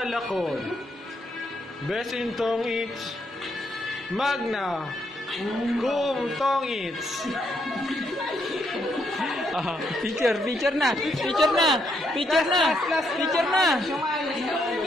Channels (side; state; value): both; normal; correlation 0.76